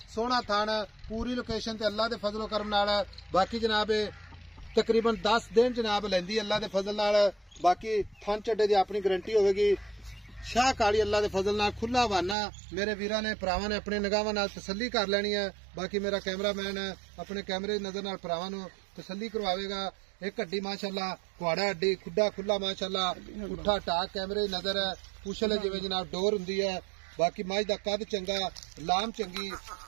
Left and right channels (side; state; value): left; drops out; at 12.4 s